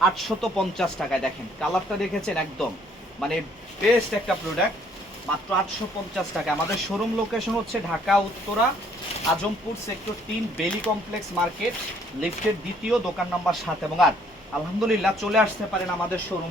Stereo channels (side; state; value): both; normal; correlation 0.63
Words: 850 টাকায়। দেখেন কালারটা দেখেছেন, একদম মানে বেস্ট একটা প্রোডাক্ট, মাত্র 850 টাকা। আমাদের শোরুম লোকেশন হচ্ছে ঢাকা উত্তরা আজমপুর সেক্টর 3 বেলি কমপ্লেক্স মার্কেট, লিফটের 2য় দোকান নাম্বার 7 এবং 8। আলহামদুলিল্লাহ চলে আসতে পারেন আমাদের